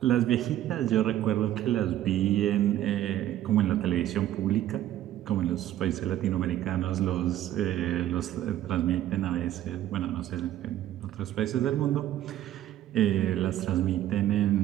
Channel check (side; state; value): left; quieter; 12.7 dB